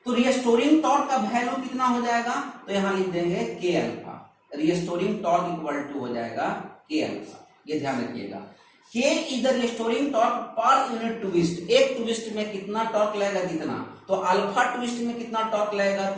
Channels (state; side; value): identical; both; correlation 1.00